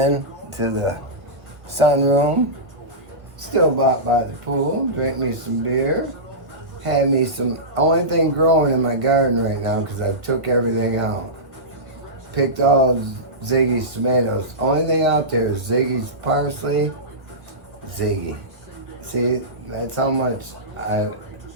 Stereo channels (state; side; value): late; left; 1.2 ms